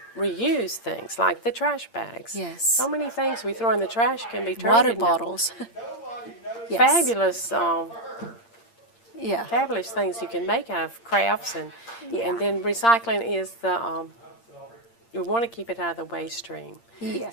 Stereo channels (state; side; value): late; right; 8.7 ms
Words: reuse things like the trash bags. Yes. So many things we throw in the trash can be turned Water into bottles. Yes. fabulous. Yeah. Fabulous things you can make out of crafts, and then recycling is you want to keep it out of the waste stream.